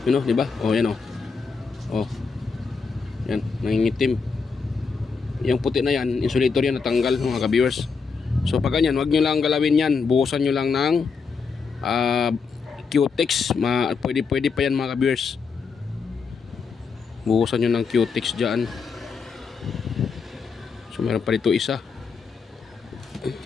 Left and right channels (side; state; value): right; quieter; 5.2 dB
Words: diba? Yan yan, nangingitim. Yung puti na yan, insulator yan, natanggal mga ka-viewers. So pag ganyan, wag nyo lang galawin yan. Buhusan nyo lang ng Q-Tex. Pwede pa yan mga ka-viewers. Buhusan nyo ng Q-Tex dyan. So meron pa rito isa.